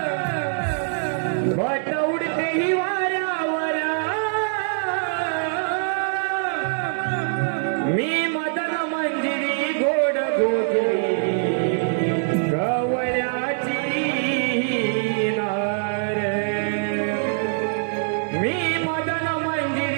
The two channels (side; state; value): left; silent; 63 dB below the other